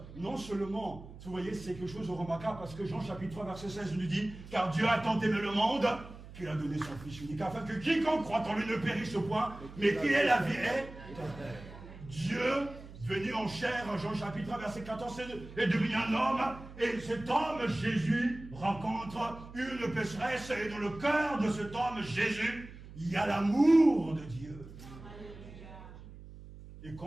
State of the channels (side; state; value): right; noise; hum, 16 dB below the sound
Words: Non seulement, vous voyez, c'est quelque chose de remarquable parce que Jean chapitre 3 verset 16 nous dit « Car Dieu a tant aimé le monde qu'il a donné son Fils unique, afin que quiconque croit en lui ne périsse au point, mais qu'il ait la vie éternelle. » Dieu, venu en chair, Jean chapitre 3 verset 14, est devenu un homme, et cet homme, Jésus, rencontre une pécheresse, et dans le cœur de cet homme, Jésus, il y a l'amour de Dieu. Et